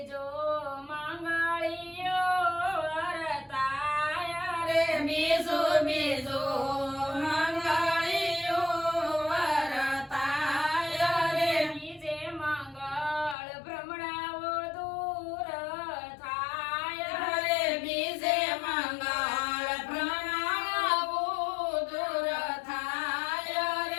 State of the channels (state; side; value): drops out; right; at 13.4 s